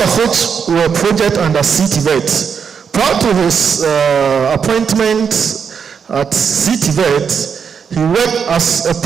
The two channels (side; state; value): left; quieter; 6.7 dB